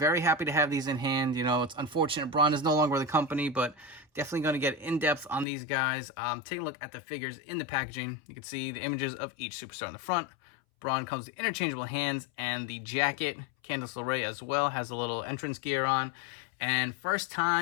happy to have these in hand. You know, it's unfortunate Braun is no longer with the company, but definitely going to get in depth on these guys. Take a look at the figures in the packaging. You can see the images of each superstar in the front. Braun comes with interchangeable hands and the jacket. Candice LeRae as well has a little entrance gear on. And first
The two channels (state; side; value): drops out; right; at 5.5 s